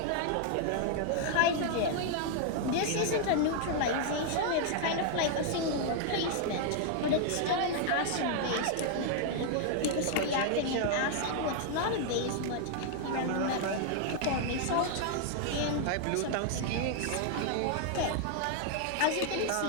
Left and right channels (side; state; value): both; different; correlation 0.00